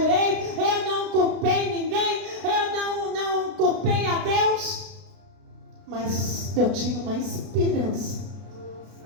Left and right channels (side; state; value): left; late; 32 ms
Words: eu não culpei ninguém, eu não culpei a Deus. Mas eu tinha uma esperança